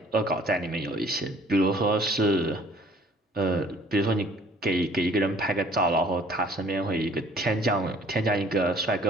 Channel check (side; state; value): both; normal; correlation 0.55